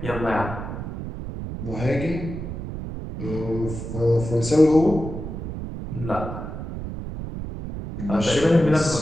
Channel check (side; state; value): right; noise; rumble, 7 dB below the sound